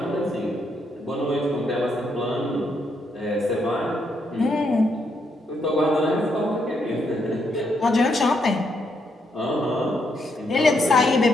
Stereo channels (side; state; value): both; normal; correlation 0.77